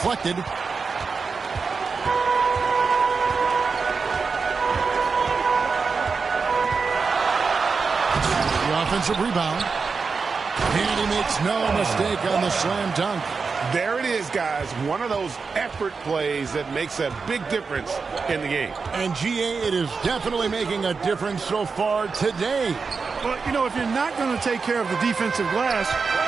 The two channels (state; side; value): quieter; left; 4.9 dB